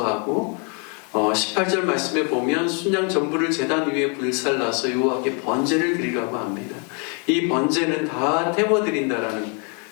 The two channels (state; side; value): quieter; right; 36.9 dB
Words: 18절 말씀에 보면 순양 전부를 제단 위에 불살라서 여호와께 번제를 드리라고 합니다. 이 번제는 다 태워드린다라는